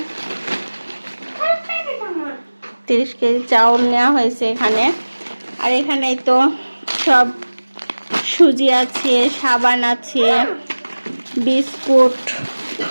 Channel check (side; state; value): both; inverted; correlation -1.00